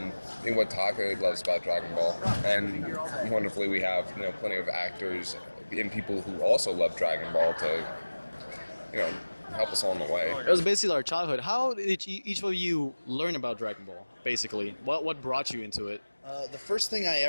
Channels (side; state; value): both; inverted; correlation -1.00